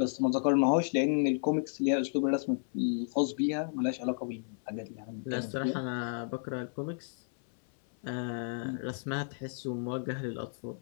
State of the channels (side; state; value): right; silent; 56 dB below the other